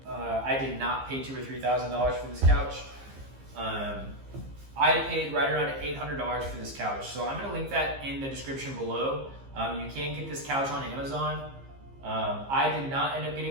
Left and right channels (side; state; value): left; late; 15 ms